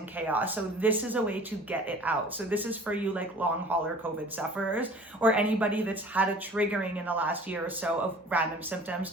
chaos. So this is a way to get it out. So this is for you like long hauler COVID sufferers, or anybody that's had a triggering in the last year or so of random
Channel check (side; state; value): both; normal; correlation 0.46